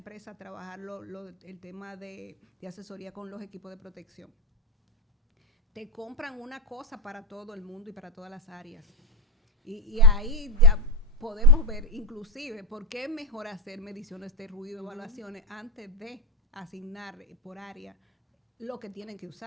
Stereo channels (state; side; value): normal; both; correlation 0.12